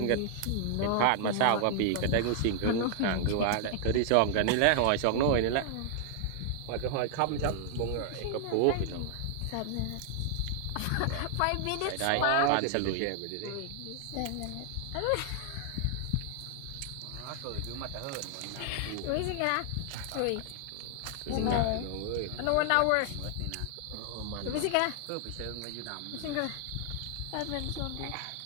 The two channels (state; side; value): different; both; correlation 0.00